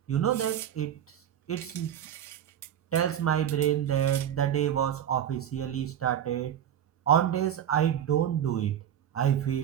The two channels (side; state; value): left; quieter; 10.0 dB